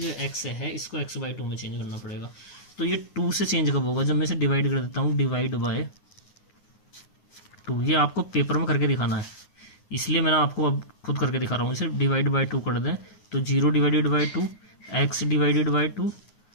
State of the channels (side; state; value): right; late; 9.6 ms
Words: x है इसको x/2 में चेंज करना पड़ेगा। तो ये 2 से चेंज कब होगा, जब मैं इसे डिवाइड कर देता हूँ, डिवाइड बाय 2। ये आपको पेपर में करके दिखाना है, इसलिए मैंने आपको अब खुद करके दिखा रहा हूँ। इसे डिवाइड बाय 2 कर दें तो 0 divided by 2, x divided by 2